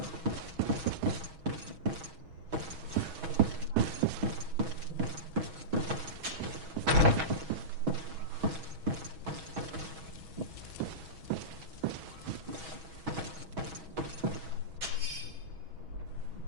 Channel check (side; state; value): left; late; 6.2 ms